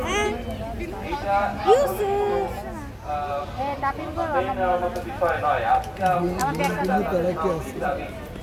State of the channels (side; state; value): both; identical; correlation 1.00